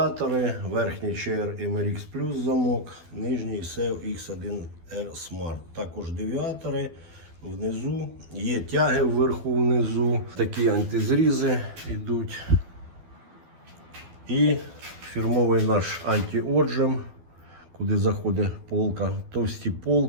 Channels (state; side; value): late; left; 12 ms